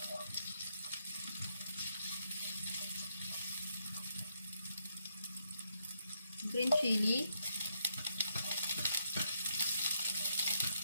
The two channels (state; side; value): inverted; both; correlation -0.78